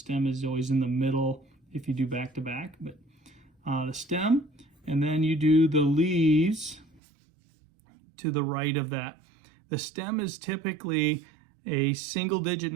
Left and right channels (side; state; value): left; drops out; at 7.0 s